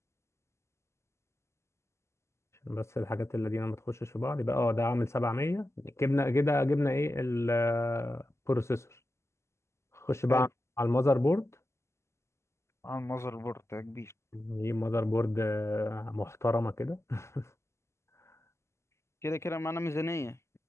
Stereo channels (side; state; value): right; late; 0.13 ms